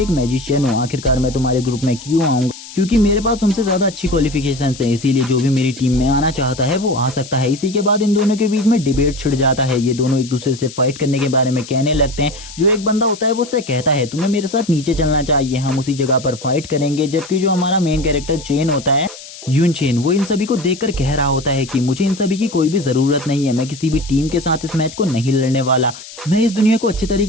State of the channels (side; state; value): left; noise; hiss, 15 dB below the sound